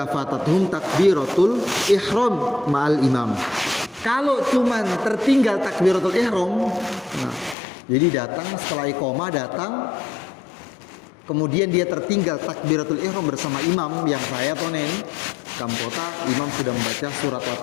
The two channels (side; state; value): right; drops out; at 7.6 s